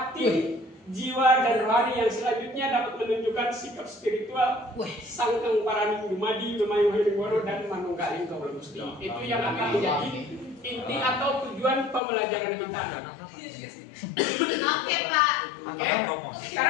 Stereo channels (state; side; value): drops out; right; at 12.0 s